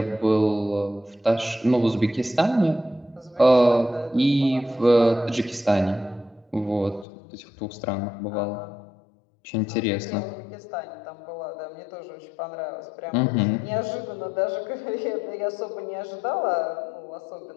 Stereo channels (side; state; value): right; drops out; at 7.1 s